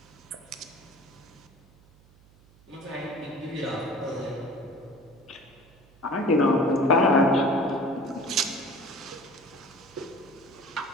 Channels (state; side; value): noise; right; hum, 27 dB below the sound